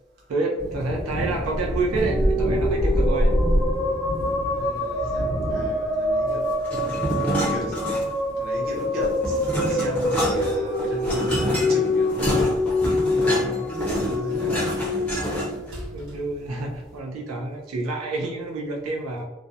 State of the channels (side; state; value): both; normal; correlation 0.62